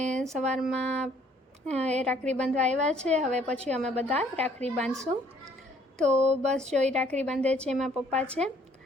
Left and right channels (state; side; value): normal; both; correlation 0.61